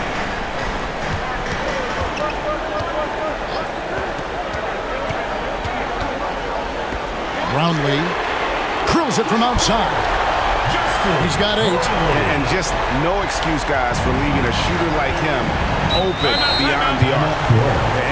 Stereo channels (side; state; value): both; identical; correlation 1.00